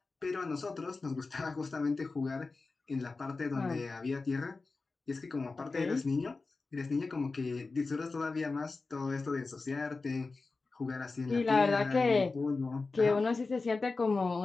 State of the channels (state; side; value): quieter; right; 3.9 dB